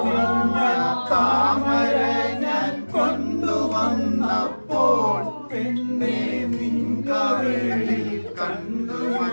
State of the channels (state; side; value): inverted; both; correlation -1.00